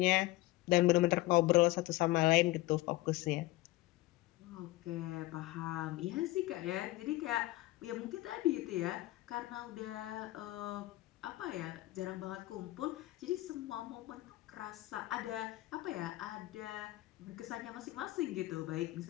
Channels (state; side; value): quieter; right; 18.4 dB